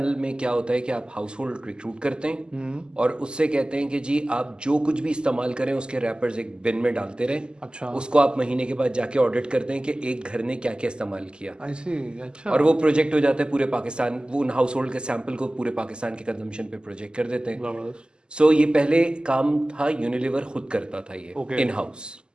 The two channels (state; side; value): late; left; 0.048 ms